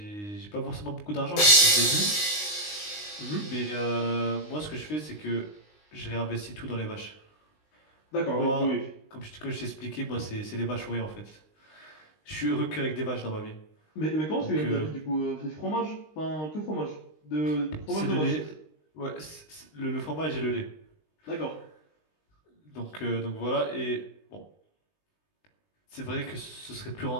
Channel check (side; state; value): right; late; 19 ms